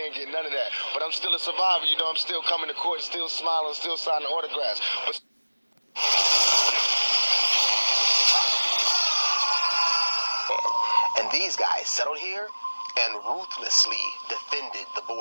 get none of that. But I'm still a survivor. You know, I'm still coming to court, still smiling, still signing autographs. But And these guys settled here and ruthlessly defended the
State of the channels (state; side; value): inverted; both; correlation -1.00